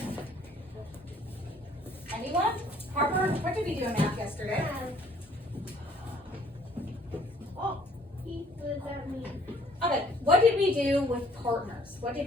Anyone? Harper, what did we do in math yesterday? Oh, what does that mean? Okay. What did we do with partners? What did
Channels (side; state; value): both; normal; correlation 0.60